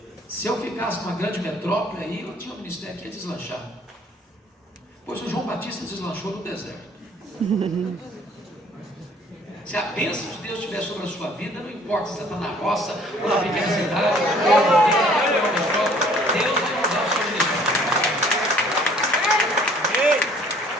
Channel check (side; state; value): both; normal; correlation 0.56